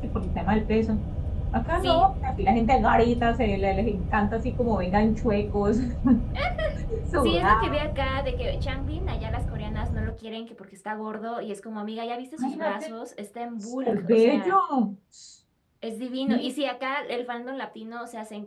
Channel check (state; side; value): identical; both; correlation 1.00